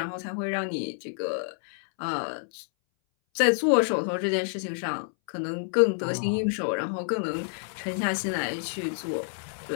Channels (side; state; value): right; silent; 59 dB below the other